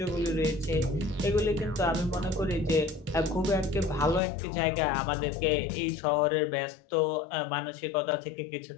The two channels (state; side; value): drops out; right; at 4.2 s